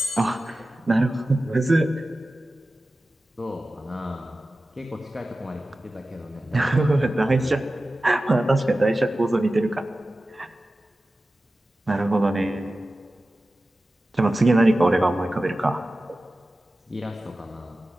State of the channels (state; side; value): normal; both; correlation 0.95